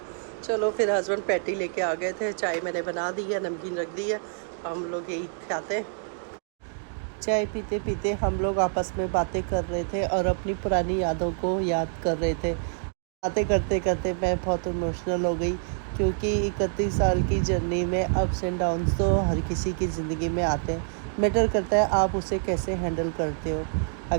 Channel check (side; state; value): left; silent; digital silence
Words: चलो फिर हस्बैंड पैटी लेके आ गए थे, चाय मैंने बना दी है, नमकीन रख दी है, हम लोग यही खाते हैं। चाय पीते पीते हम लोग आपस में बातें कर रहे थे और अपनी पुरानी यादों को याद कर रहे थे। बातें करते करते मैं बहुत इमोशनल हो गई, क्योंकि 31 साल की जर्नी में अप्स एंड डाउन्स तो हर किसी की ज़िंदगी में आते हैं। मैटर करता है आप उसे कैसे हैंडल करते हो।